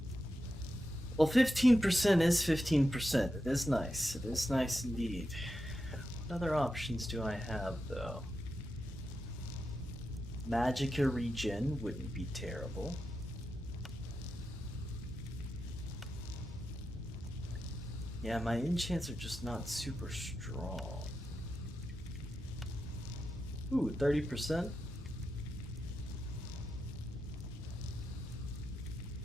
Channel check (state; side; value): normal; both; correlation 0.89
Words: Well, 15% is 15%. It is nice. It is nice indeed. What other options do I have, though? Magicka regen wouldn't be terrible. Yeah, my enchants are just not super strong. Ooh, 30%?